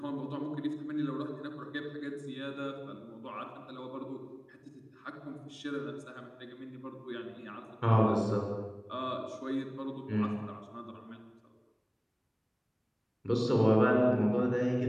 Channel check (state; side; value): identical; both; correlation 1.00